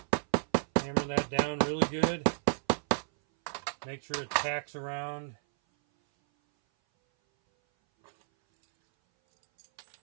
Hammer that down really good. Make sure it packs around.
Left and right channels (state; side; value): silent; left; 57 dB below the other